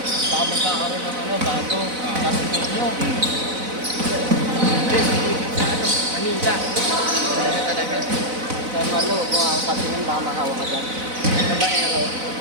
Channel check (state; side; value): late; left; 4.0 ms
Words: baka magkakaroon ng ano, bago. Tapos ninyo. Hindi, sa ano, Manila. Manila talaga. Kaya malo, kung ako patingin, baka mahawa ka dyan. Sa Baero.